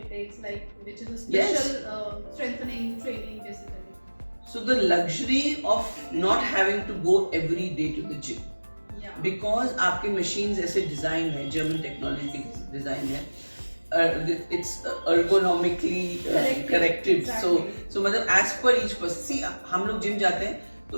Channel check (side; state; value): both; inverted; correlation -1.00